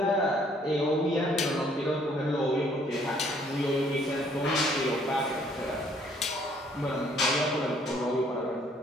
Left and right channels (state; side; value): normal; both; correlation 0.63